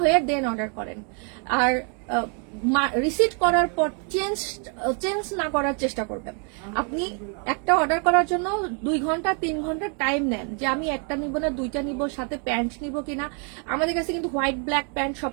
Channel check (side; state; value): left; quieter; 39.8 dB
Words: হয়ে দেন অর্ডার করেন। আর রিসিট করার পর চেঞ্জ না করার চেষ্টা করবেন। আপনি একটা অর্ডার করার জন্য 2 ঘন্টা 3 ঘন্টা টাইম নেন যে আমি একটা নিব না দুইটা নিব, সাথে প্যান্ট নিব কিনা। আমাদের কাছে কিন্তু হোয়াইট ব্ল্যাক প্যান্ট